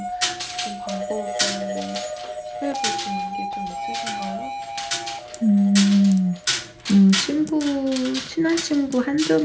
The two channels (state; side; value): identical; both; correlation 1.00